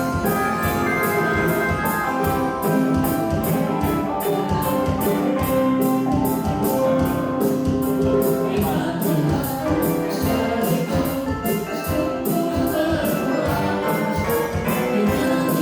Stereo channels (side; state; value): both; identical; correlation 1.00